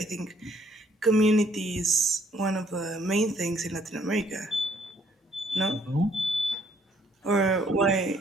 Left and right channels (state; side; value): normal; both; correlation 0.66